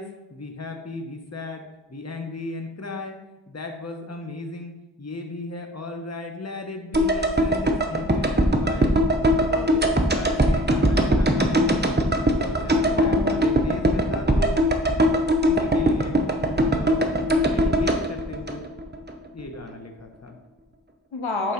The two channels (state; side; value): normal; both; correlation 0.49